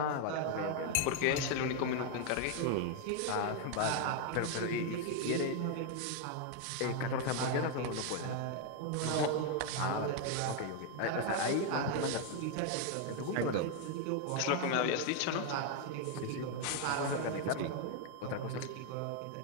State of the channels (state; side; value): different; both; correlation 0.01